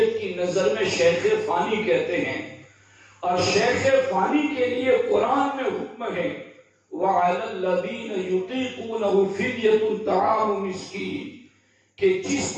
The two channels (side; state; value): both; identical; correlation 1.00